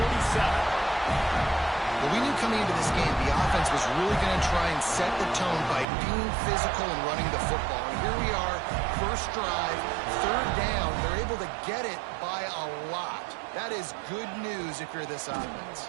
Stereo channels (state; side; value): drops out; left; at 5.9 s